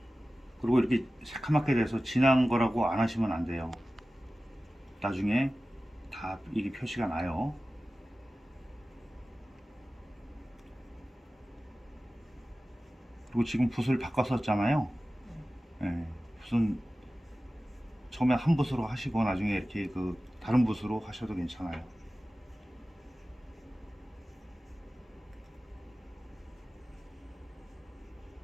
그리고 이렇게 새카맣게 돼서 진한 거라고 안 하시면 안 돼요. 나중에 다 이게 표시가 나요. 그리고 지금 붓을 바꿨었잖아요. 네, 붓은 처음에 한 붓으로 하시고 나중에 이렇게 그 다른 붓으로 하셔도 괜찮아요.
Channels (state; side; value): normal; both; correlation 0.96